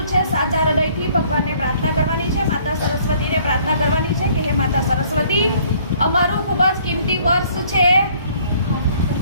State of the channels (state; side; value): inverted; both; correlation -0.59